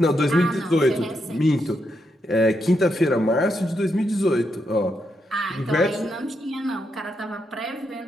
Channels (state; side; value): normal; both; correlation 0.82